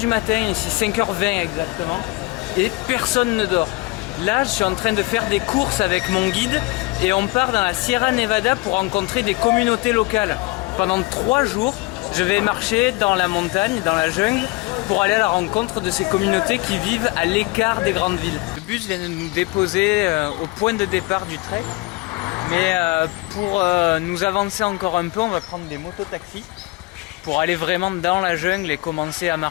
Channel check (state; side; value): quieter; right; 23.6 dB